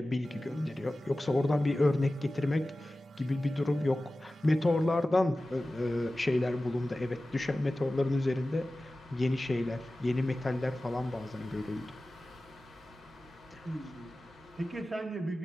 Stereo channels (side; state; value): both; normal; correlation 0.96